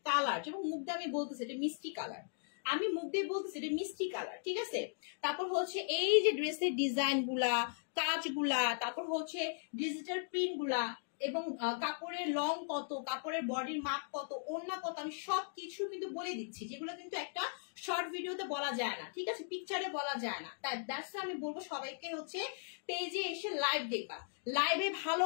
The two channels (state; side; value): silent; right; digital silence